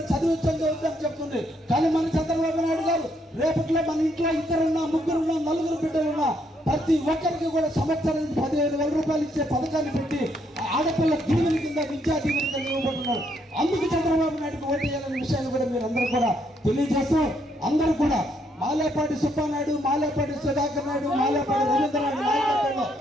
చదివించని చెప్తుంది. కానీ మన చంద్రబాబు నాయుడు గారు రేపట్లో మన ఇంట్లో 2 3 4 బిడ్డలున్నా ప్రతి ఒక్కరికి కూడా సంవత్సరానికి 15,000 రూపాయలు ఇచ్చే పథకాన్ని పెట్టి ఆడపిల్ల దీవెన కింద విద్యా దీవెన కింద ఇవ్వబోతున్నారు. అందుకు చంద్రబాబు నాయుడుకి ఓటు వేయాలనే విషయాన్ని కూడా మీరు అందరూ కూడా తెలియజేస్తూ అందరూ కూడా మాలేపాటి సుబ్బానాయుడు, మాలేపాటి సుధాకర్ నాయుడు, మాలేపాటి రవీంద్రనాయుడు నాయకత్వంలో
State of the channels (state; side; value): normal; both; correlation 0.73